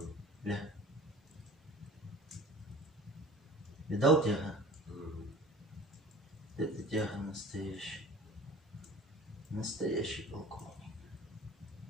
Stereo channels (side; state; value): both; normal; correlation 0.42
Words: Ля. Видал тяга? Это тяга настоящая. Настоящий полковник.